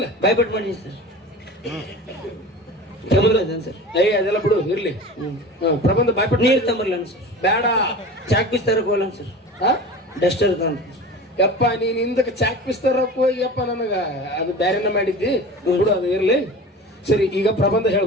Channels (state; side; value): normal; both; correlation 0.35